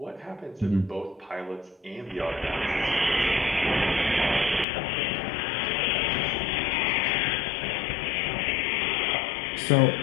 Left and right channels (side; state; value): right; drops out; at 4.7 s